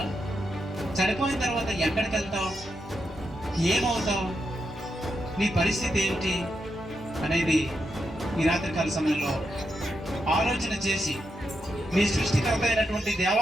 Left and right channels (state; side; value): normal; both; correlation 0.84